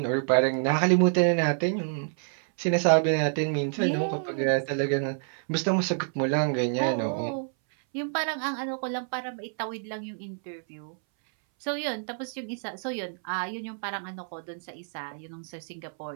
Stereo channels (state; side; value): silent; left; 59 dB below the other